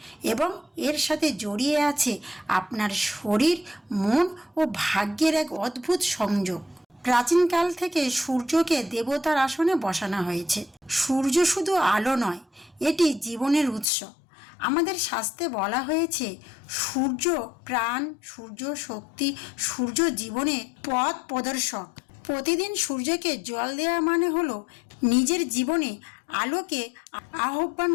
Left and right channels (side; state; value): right; drops out; at 13.9 s